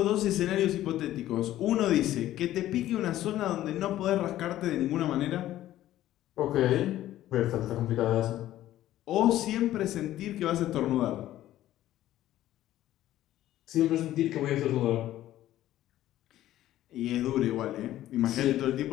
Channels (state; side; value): quieter; right; 13.8 dB